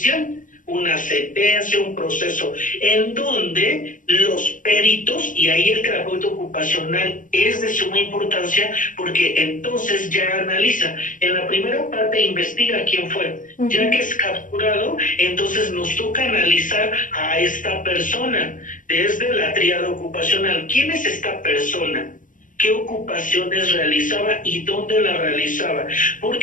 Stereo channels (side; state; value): right; late; 0.38 ms